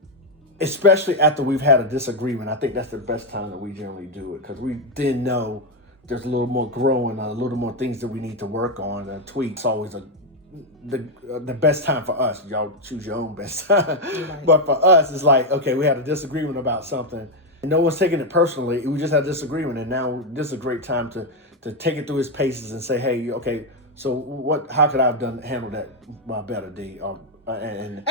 especially after we've had a disagreement, I think that's the best time that we generally do it, because we then know there's a little more growing, a little more things that we need to work on and tweak. It's always the best time for us. Y'all choose your own best time. Right. But for us, it's like, okay, we had a disagreement about something. And no one's taking it personally. We just had a disagreement, and now this is a great time to take it through its paces and say, hey, okay, so how could I have handled that better, D? And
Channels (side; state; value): both; normal; correlation 0.04